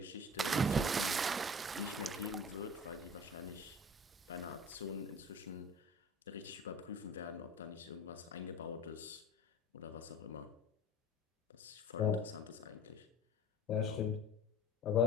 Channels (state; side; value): normal; both; correlation 0.41